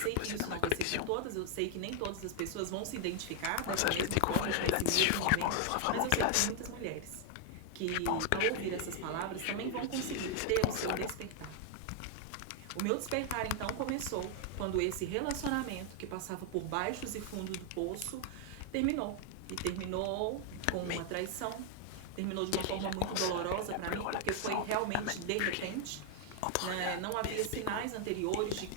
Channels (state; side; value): different; both; correlation 0.00